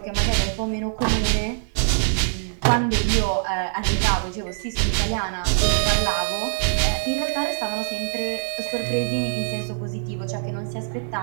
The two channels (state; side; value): silent; left; digital silence